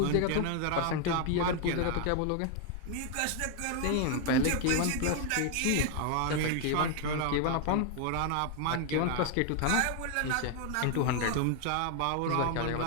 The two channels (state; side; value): different; both; correlation 0.00